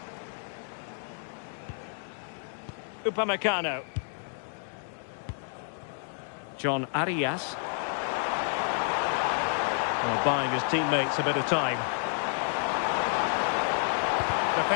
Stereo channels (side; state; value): right; silent; 58 dB below the other